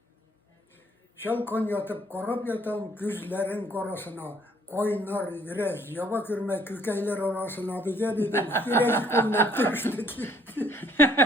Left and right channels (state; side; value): normal; both; correlation 0.63